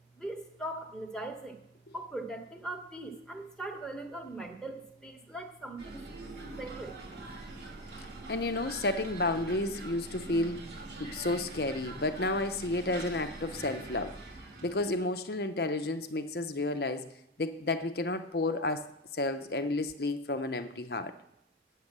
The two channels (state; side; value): normal; both; correlation 0.19